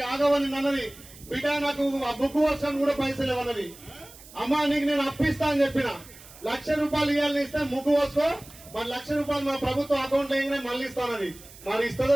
బిడ్డ నాకు బుక్ వర్షం కూడా పైసలు ఇవ్వనది. అమ్మా నీకు నేను అప్పిస్తా అని చెప్పిన ₹1,00,000 ఇవ్వాలని ఇస్తే ముగ్గు వస్తూ మరి ₹1,00,000 మా ప్రభుత్వం అకౌంట్ వేయగానే మళ్ళీ ఇస్తానది. మరి ఇస్తుందో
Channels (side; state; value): right; noise; hiss, 20 dB below the sound